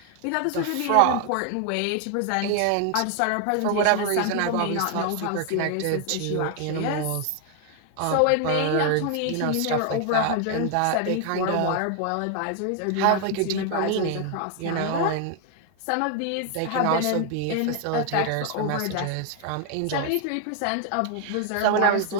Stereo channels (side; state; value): both; different; correlation 0.00